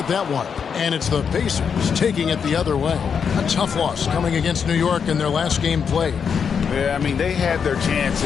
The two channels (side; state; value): right; quieter; 6.7 dB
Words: that one. And it's the Pacers taking it the other way. A tough loss coming against New York in their last game played. Yeah, I mean, they had their